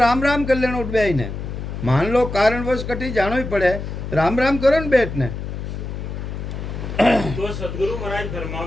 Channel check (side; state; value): left; noise; hum, 6 dB below the sound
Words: राम कर लेना उठ बे ने, मान लो कारणवश कटी जानो ही पड़े, राम राम करो न बैठ ने। तो सदगुरु महाराज